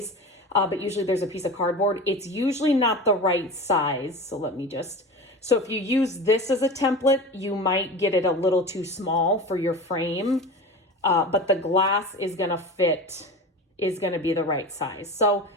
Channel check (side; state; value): both; normal; correlation 0.31